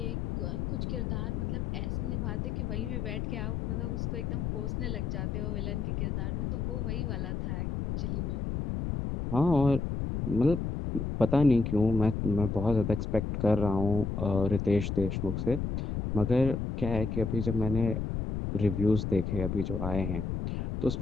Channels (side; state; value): left; noise; rumble, 2 dB below the sound